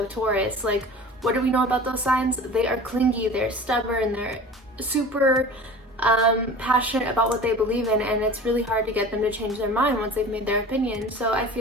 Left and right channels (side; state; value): both; normal; correlation 0.39